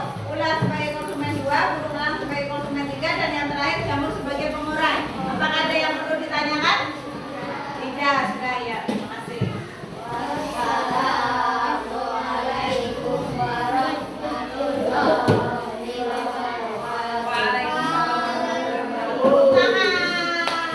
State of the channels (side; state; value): both; identical; correlation 1.00